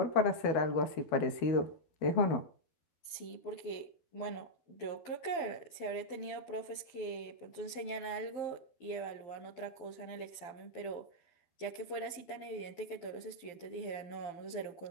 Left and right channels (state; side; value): late; right; 12 ms